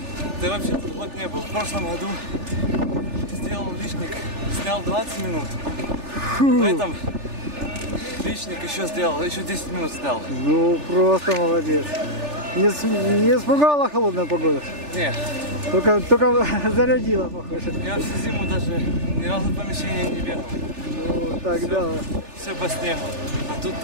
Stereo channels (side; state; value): left; late; 3.4 ms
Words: Ты вообще тут год не был. В прошлом году сделал личник, снял 20 минут. В этом личник еще сделал, еще 10 минут снял. Ну, просто молодец. Не испугала холодная погода? Нет. Только зарядила, похоже. Я всю зиму даже ни разу в помещении не бегал. Ну, тогда... Все по снегу. А тут